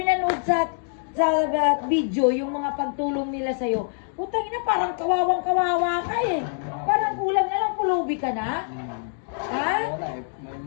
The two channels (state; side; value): silent; right; digital silence